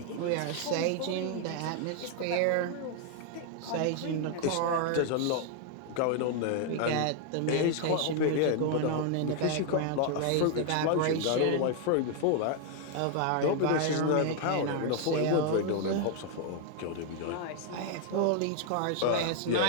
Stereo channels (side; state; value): both; different; correlation 0.00